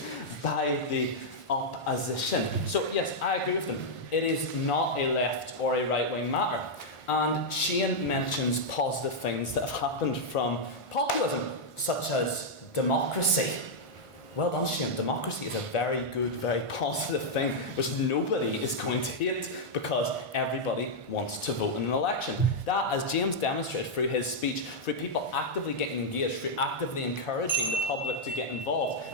by the opposition. So yes, I agree with them. It is not a left or a right-wing matter. And Shane mentions positive things that have happened from populism, such as democracy. Well done, Shane. Democracy is a very good, very positive thing, which nobody is going to hate because everybody wants to vote in an election. That, as James demonstrated through his speech, through people actively getting engaged, through actively encouraging the public to get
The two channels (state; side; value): late; right; 1.5 ms